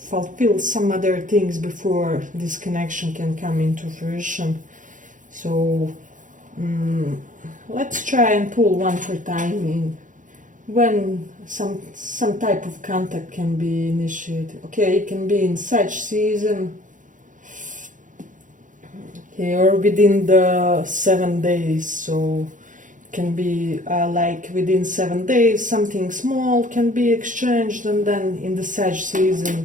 some other things before this connection can come into fruition. So let's try and pull one for timing. When some type of contact can be initiated. Okay, it can be in such season. Okay, or within the 7 days. So it can be like within 7 days, something small can be exchanged, and then in the Sag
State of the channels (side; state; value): left; late; 0.37 ms